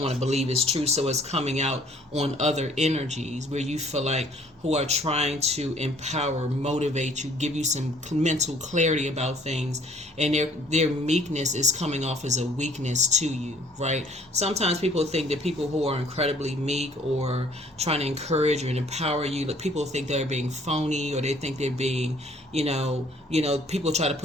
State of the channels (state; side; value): normal; both; correlation 0.58